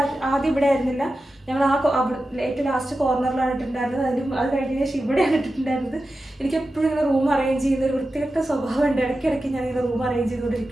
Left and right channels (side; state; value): both; normal; correlation 0.92